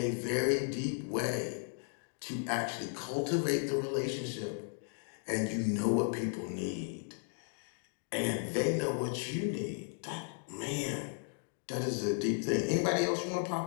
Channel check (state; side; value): silent; right; 54 dB below the other